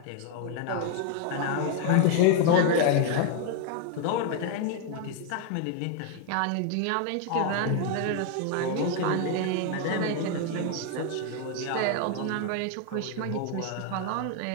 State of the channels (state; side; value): different; both; correlation 0.01